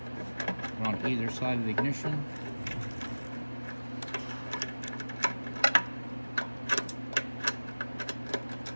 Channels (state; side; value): inverted; both; correlation -1.00